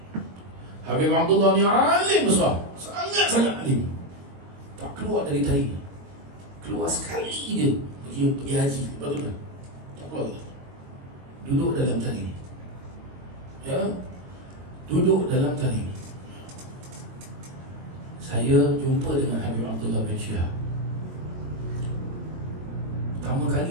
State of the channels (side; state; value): left; late; 22 ms